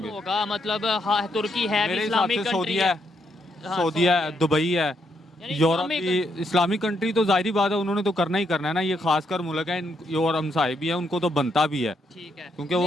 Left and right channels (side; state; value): both; normal; correlation 0.77